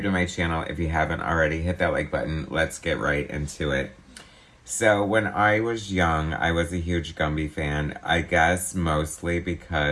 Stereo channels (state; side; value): identical; both; correlation 1.00